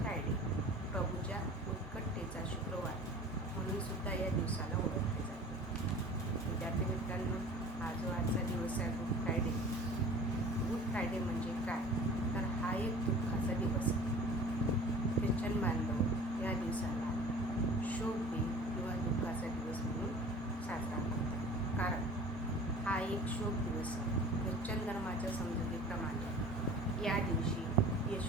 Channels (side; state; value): both; normal; correlation 0.42